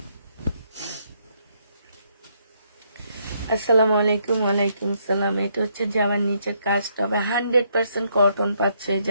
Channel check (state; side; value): inverted; both; correlation -0.73